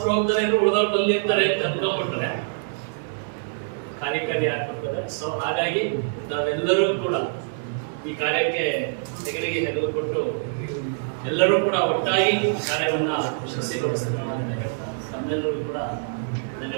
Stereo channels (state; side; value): silent; left; 62 dB below the other